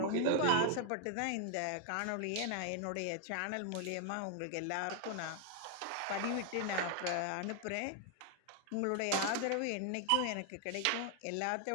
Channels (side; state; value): both; different; correlation 0.00